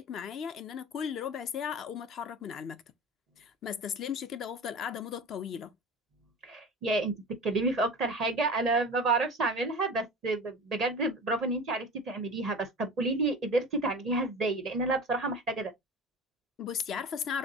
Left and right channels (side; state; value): both; normal; correlation 0.34